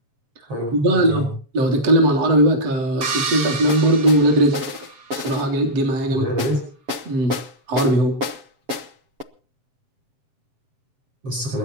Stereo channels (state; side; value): late; left; 7.3 ms